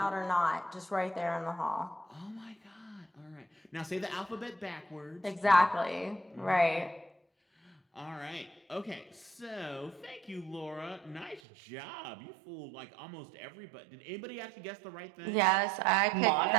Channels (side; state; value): left; drops out; at 11.4 s